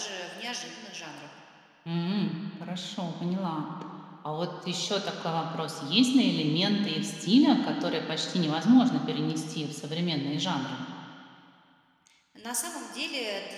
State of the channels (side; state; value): both; identical; correlation 1.00